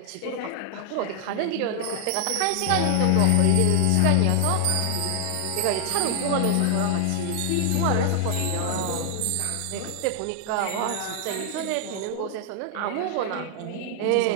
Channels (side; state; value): both; different; correlation 0.00